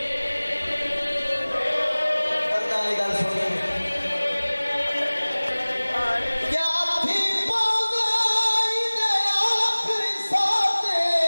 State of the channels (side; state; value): both; inverted; correlation -1.00